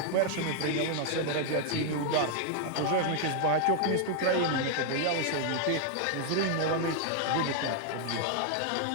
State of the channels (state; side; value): different; both; correlation 0.00